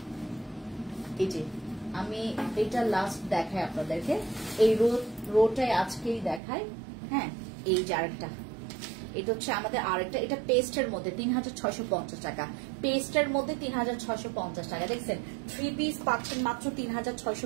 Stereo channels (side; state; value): left; drops out; at 6.4 s